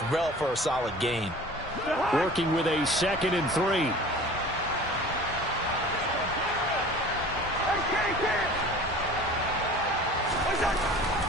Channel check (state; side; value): normal; both; correlation 0.43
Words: well for a solid gain. Working with a 2nd and 3.